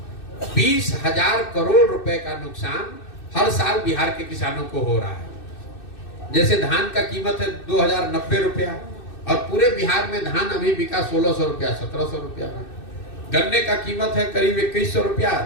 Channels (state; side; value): late; right; 2.6 ms